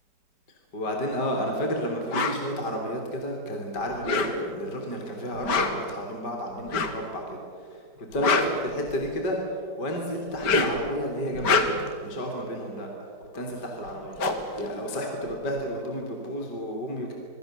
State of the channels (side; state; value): right; late; 5.0 ms